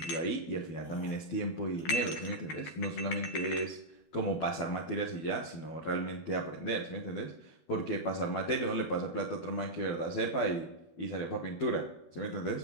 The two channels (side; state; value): right; late; 13 ms